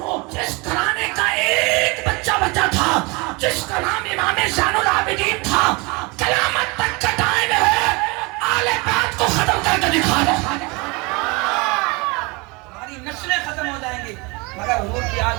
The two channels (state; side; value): quieter; left; 27.2 dB